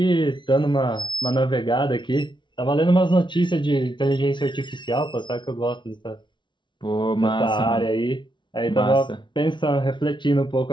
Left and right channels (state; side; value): late; right; 0.23 ms